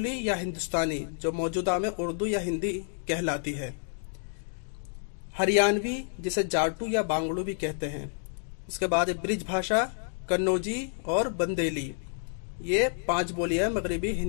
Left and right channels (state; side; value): silent; right; digital silence